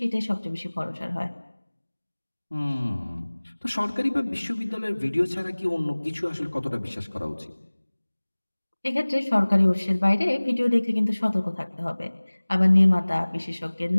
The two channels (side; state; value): both; inverted; correlation -1.00